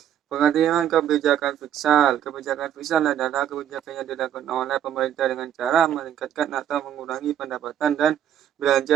Pengertian kebijakan fiskal. Kebijakan fiskal adalah kebijakan yang dilakukan oleh pemerintah dengan cara meningkatkan atau mengurangi pendapatan dan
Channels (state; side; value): quieter; left; 10.3 dB